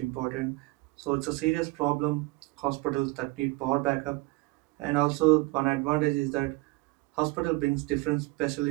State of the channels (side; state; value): left; quieter; 23.6 dB